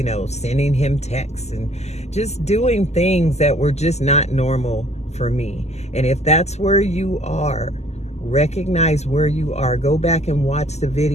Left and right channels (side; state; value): right; late; 0.32 ms